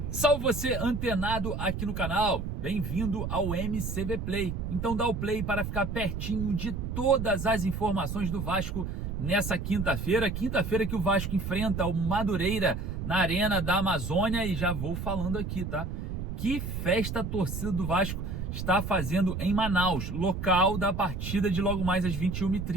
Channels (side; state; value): right; noise; rumble, 4 dB below the sound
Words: Salve você antenado aqui no canal, bem-vindo ao MCV Play. Então dá o play para ficar pertinho de todas as informações do Vasco nessa quinta-feira que o Vasco enfrenta o Madureira na Arena da Amazônia. E já vou falando aqui, tá? Que festa a torcida do Vasco está fazendo em Manaus, local da partida de logo mais às